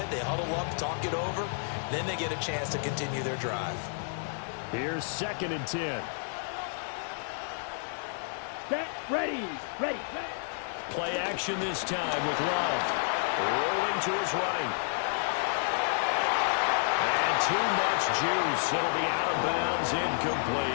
They huddle up, talk it over. Then they get a chance to continue their drive. Here's 2nd and 10. Set, ready. Play action this time with Love. Rolling to his right. And too much juice. It'll be out of bounds,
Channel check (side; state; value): right; silent; digital silence